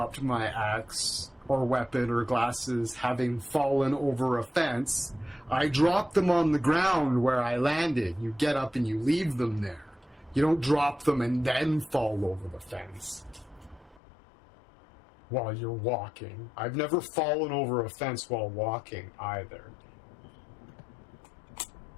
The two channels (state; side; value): drops out; right; at 14.0 s